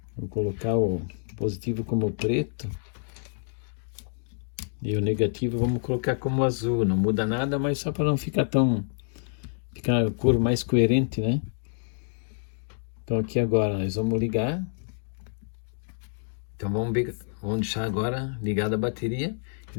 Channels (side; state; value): right; silent; digital silence